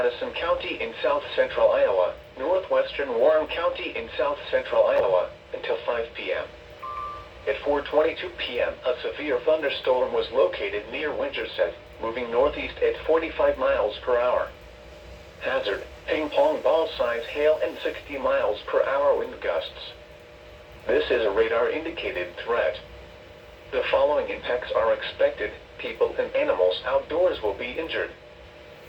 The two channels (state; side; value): identical; both; correlation 1.00